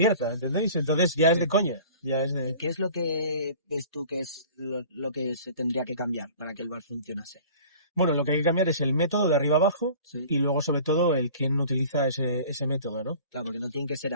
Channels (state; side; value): inverted; both; correlation -0.45